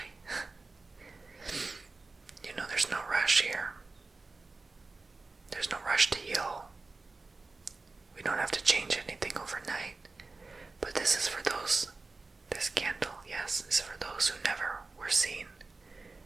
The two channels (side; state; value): left; quieter; 3.7 dB